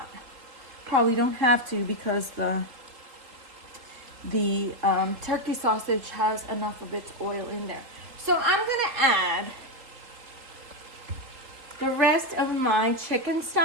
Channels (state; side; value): late; left; 3.6 ms